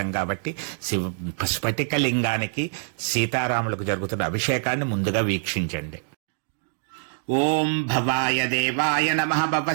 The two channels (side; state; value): left; silent; 62 dB below the other